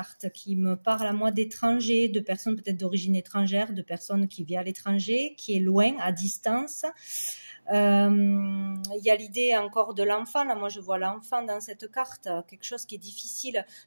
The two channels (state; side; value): inverted; both; correlation -1.00